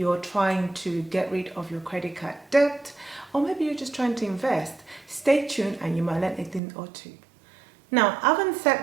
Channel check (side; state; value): left; drops out; at 6.6 s